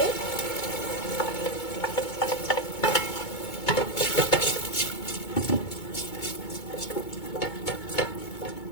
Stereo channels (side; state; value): right; late; 2.2 ms